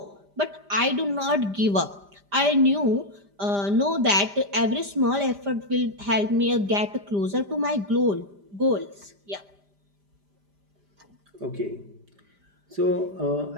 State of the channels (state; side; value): late; left; 5.0 ms